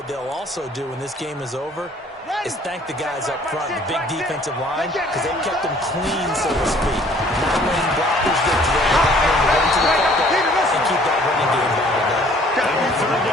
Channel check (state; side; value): normal; both; correlation 0.56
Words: they'll also do when this game is over is thank the guys up front, the big defensive line, because they've kept them clean, so to speak. Not letting blockers get to them, not letting them run to the football, and keep that running game bottled up. 3rd